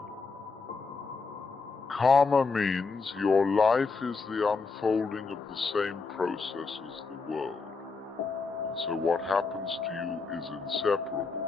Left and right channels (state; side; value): quieter; right; 4.4 dB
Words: Karma means your life is the unfolding of the same process as the world. And so what happens to you is inseparable